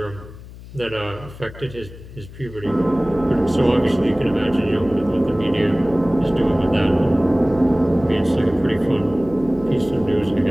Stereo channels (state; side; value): noise; left; hum, 17 dB below the sound